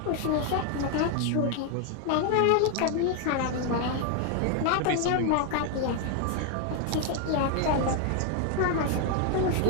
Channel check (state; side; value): different; both; correlation 0.01